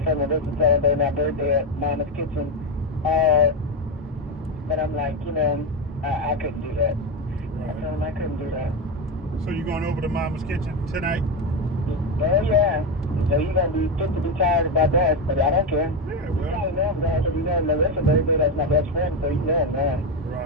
friend Melissa celebrating my birthday at Mama's Kitchen. But I'm like, I couldn't do that. I told him I couldn't do that. So you going over to Mama's Kitchen tonight? Oh yeah. So you're gonna be fit to be tired about that, but I don't care. Yeah, You well. probably know him now, because you know Melissa's birthday, that's my best friend, so you know him now.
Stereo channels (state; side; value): normal; both; correlation 0.11